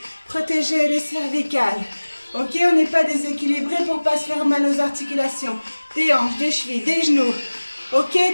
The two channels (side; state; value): both; inverted; correlation -1.00